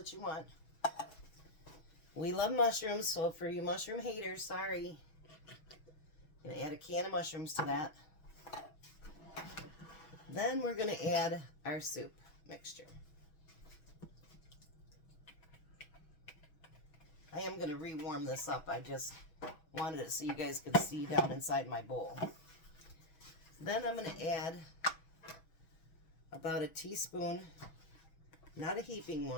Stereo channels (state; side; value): late; right; 6.2 ms